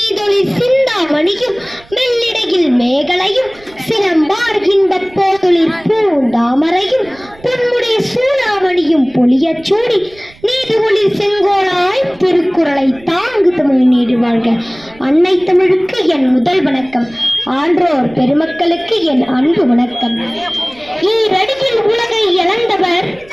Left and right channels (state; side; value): noise; right; rumble, 25 dB below the sound